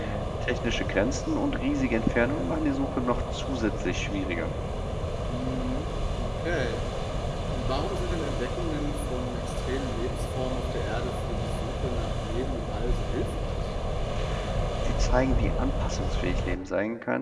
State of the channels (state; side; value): identical; both; correlation 1.00